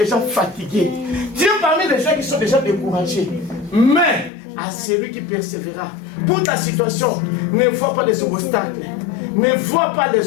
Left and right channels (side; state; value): right; drops out; at 4.3 s